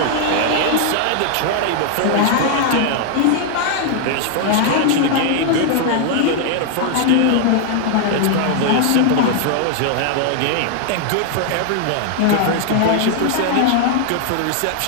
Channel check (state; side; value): different; both; correlation 0.00